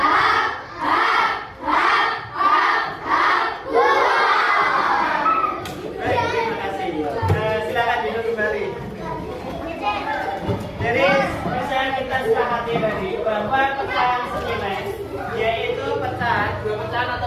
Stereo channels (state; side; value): identical; both; correlation 1.00